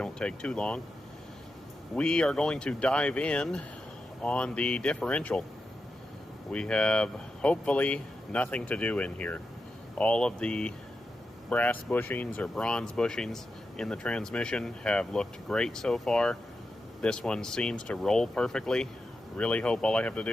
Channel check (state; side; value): normal; both; correlation 0.89